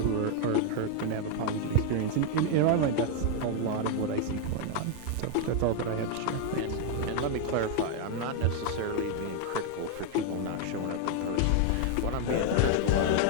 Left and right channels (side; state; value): both; different; correlation 0.00